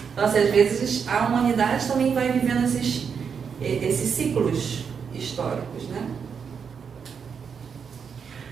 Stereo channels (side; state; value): left; quieter; 6.6 dB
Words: Então, assim, às vezes a humanidade também vai vivendo esses ciclos históricos, né?